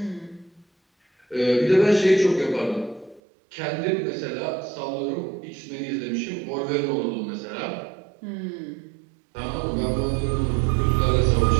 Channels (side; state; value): left; drops out; at 3.2 s